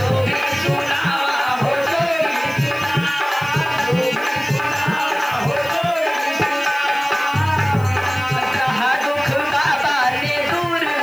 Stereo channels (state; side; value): noise; left; hiss, 22 dB below the sound